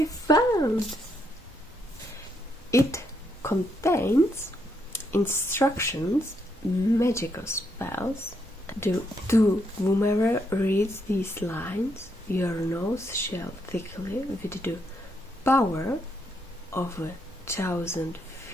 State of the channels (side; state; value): both; normal; correlation 0.76